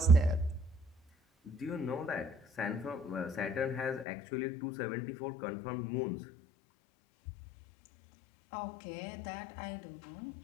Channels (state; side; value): drops out; right; at 4.0 s